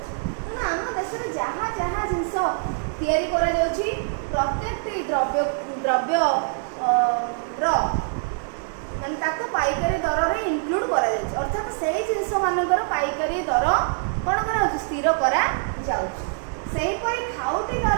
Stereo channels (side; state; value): left; silent; digital silence